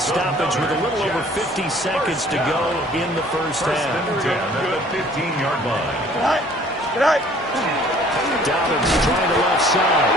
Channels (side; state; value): both; normal; correlation 0.54